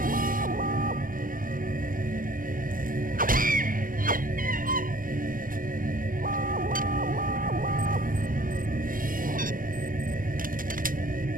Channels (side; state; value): left; late; 0.40 ms